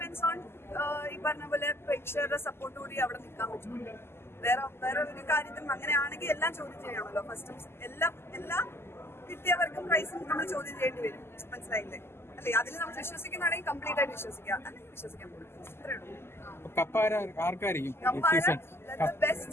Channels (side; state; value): right; late; 0.12 ms